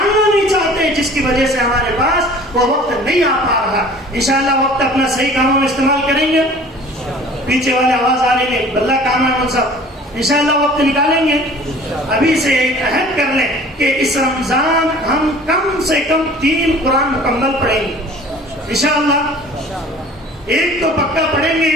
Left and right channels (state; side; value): normal; both; correlation 0.47